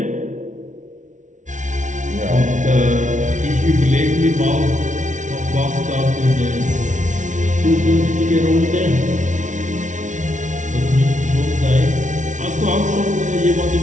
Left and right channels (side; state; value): left; late; 0.36 ms